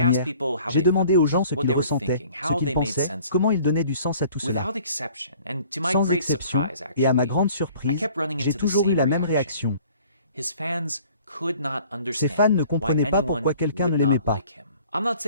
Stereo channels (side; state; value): both; inverted; correlation -0.52